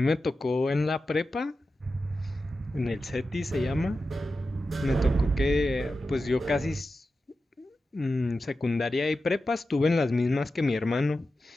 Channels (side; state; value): both; normal; correlation 0.92